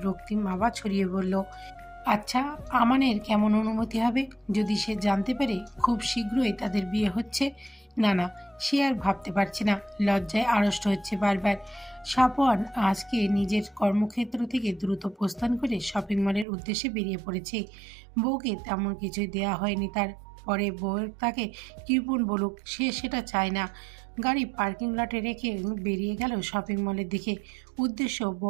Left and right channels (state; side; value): drops out; left; at 16.4 s